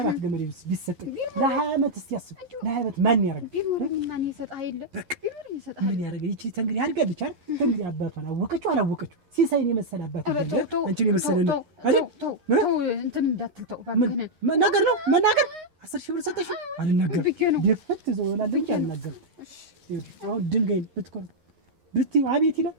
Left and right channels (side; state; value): left; late; 11 ms